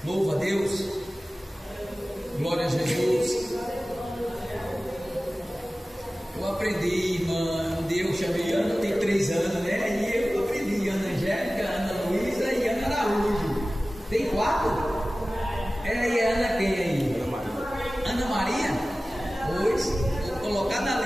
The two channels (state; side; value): normal; both; correlation 0.97